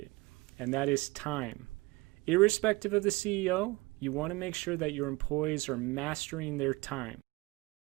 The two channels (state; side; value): quieter; left; 23.1 dB